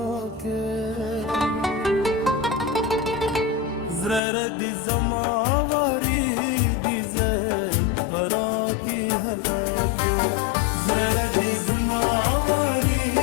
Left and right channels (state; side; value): drops out; right; at 4.2 s